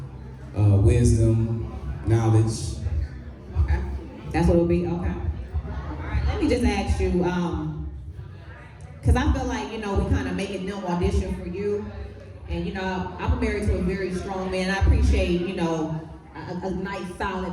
wisdom, knowledge. Okay. That's what it'll be? Okay. All right, let me just ask you, because I feel like, we kind of making them audition for you. And, I'm married to a very strong man. I appreciate, a nice,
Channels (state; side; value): identical; both; correlation 1.00